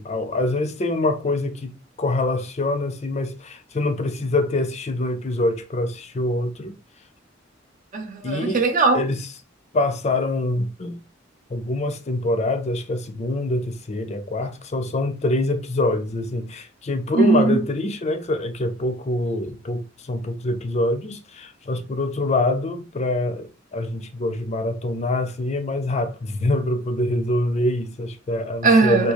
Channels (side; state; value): both; normal; correlation 0.44